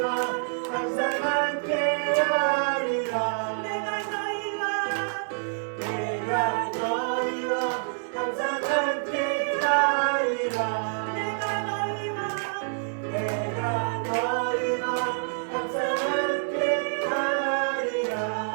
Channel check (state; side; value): silent; left; digital silence